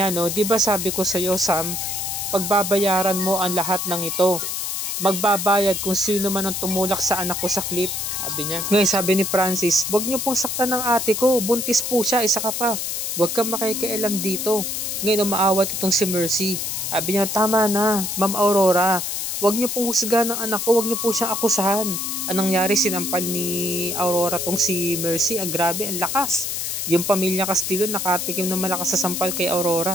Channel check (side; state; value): left; noise; hiss, 3 dB below the sound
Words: di ba sabi ko sa iyo, Sam, pagbabayaran mo ang lahat ng ito. Magbabayad kung sino man ang tumulak sa anak ko sa clip. Sabi niya. Ngayon, sabi ni Francis, wag niyo pong saktan ng ate ko. Buntis po siya, isa ka pa. Huwag kang makikialam dito. Ngayon umaawat itong si Mercy. Sabi niya, tama na, Ma'am Aurora. Huwag niyo pong husgahan ng anak ko. Huwag niyo po siyang akusahan. Anong nangyari? Sinampal ni Aurora tong si Mercy. Grabe, ang lakas. Yung pamilya Castillo nakatikim ng malakas sa sampal kay